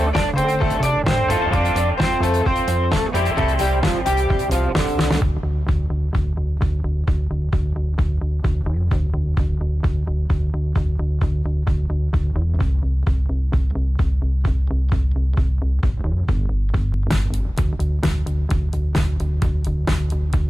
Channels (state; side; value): normal; both; correlation 0.94